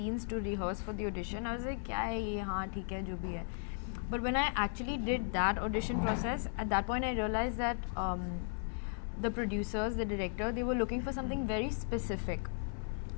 to rehearse for the audition, I was like, क्या है ये, हाँ ठीक है जो भी है. But when I actually did that audition process, at that point I realized that the producers, the director, they were looking for something very specific.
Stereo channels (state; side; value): silent; right; digital silence